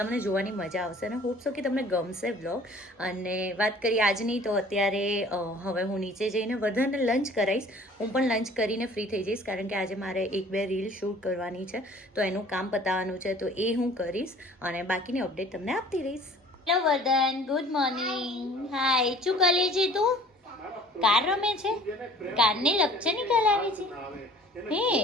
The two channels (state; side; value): normal; both; correlation 0.50